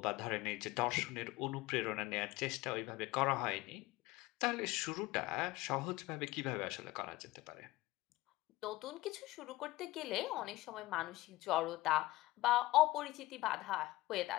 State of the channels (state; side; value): quieter; right; 18.7 dB